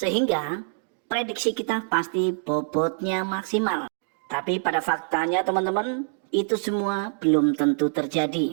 prediksi kita pasti bobotnya maksimal. Tapi pada faktanya teman-teman, itu semua belum tentu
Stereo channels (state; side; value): silent; left; digital silence